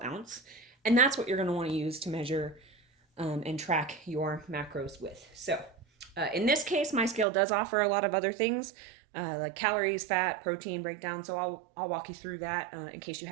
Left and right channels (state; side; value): drops out; left; at 7.2 s